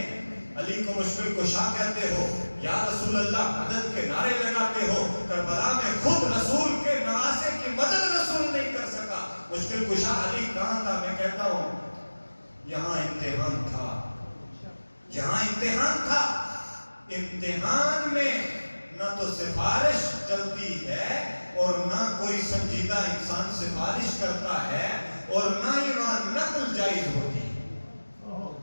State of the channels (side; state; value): both; inverted; correlation -1.00